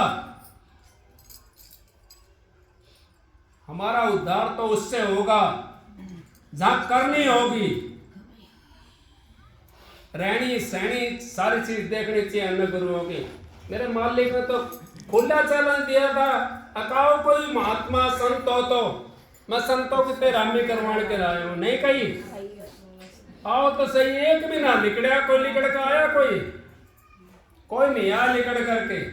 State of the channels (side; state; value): both; identical; correlation 1.00